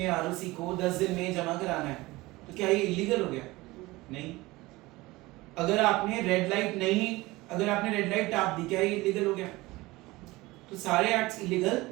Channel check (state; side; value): quieter; left; 20.5 dB